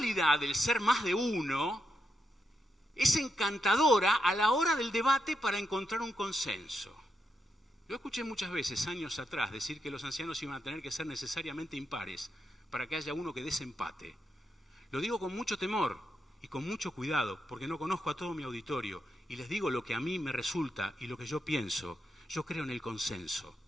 del ser más de uno es encantadora a la hora del debate para encontrar un consenso. Yo escuché muchas veces, años atrás, decir que los ancianos iban a tener que ser necesariamente impares para que haya uno que desempate. Lo digo con mucho temor y con mucho cuidado, porque no conozco a todo mi auditorio, y les digo lo que a mí me resulta y lo que yo pienso. Yo creo en el consenso.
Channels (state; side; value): normal; both; correlation 0.83